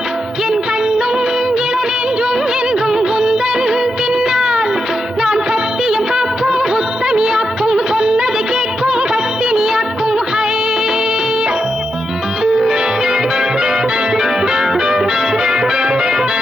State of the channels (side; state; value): both; normal; correlation 0.85